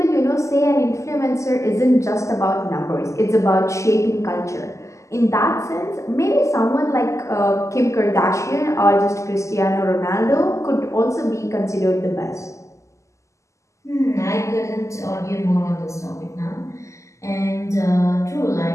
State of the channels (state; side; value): late; right; 0.15 ms